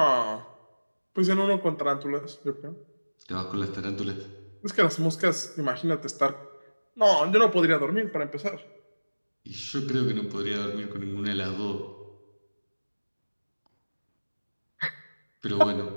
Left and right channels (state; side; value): inverted; both; correlation -1.00